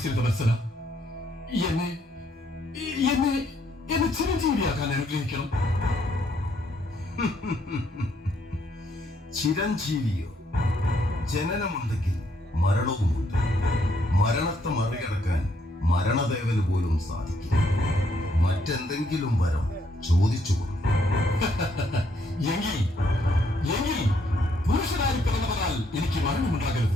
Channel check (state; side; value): normal; both; correlation 0.71